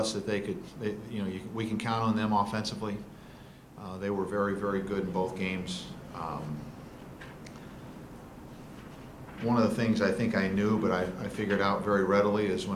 that we can count on them offensively. They were very, very good in both games. One of the things I think I knew, but I figured out very readily, is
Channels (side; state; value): both; identical; correlation 1.00